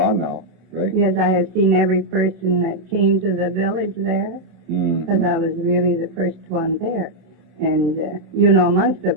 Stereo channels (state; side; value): late; left; 26 ms